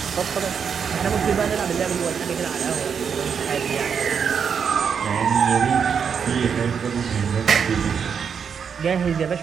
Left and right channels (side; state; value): left; quieter; 6.8 dB